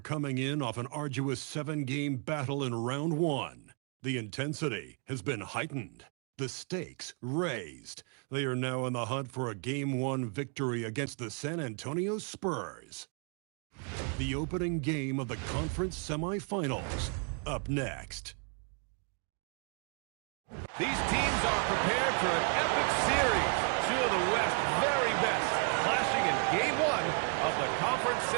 in off an arduous 7-game battle in Round 1. The intensity has been heightened, the stakes raised. They are now in the hunt for a Game 1 victory against the San Antonio Spurs. The opening game of the conference semifinals, up next. These teams are prepared for an epic series. Two of the West's very best clashing in Game 1 of the conference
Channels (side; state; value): left; quieter; 39.6 dB